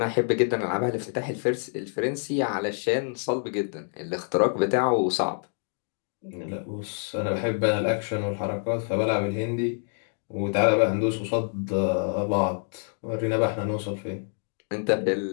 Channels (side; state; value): right; silent; 60 dB below the other